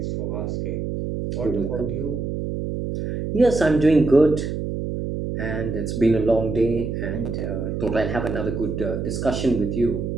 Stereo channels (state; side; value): noise; right; hum, 3 dB below the sound